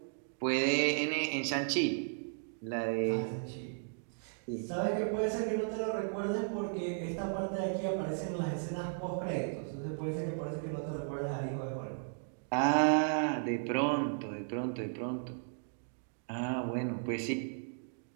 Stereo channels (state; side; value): silent; left; digital silence